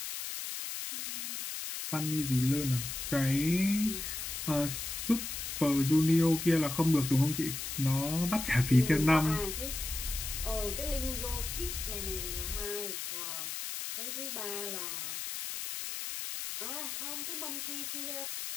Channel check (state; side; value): noise; left; hiss, 5 dB below the sound